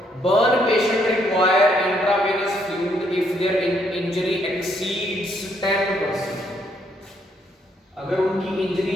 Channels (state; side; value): normal; both; correlation 0.71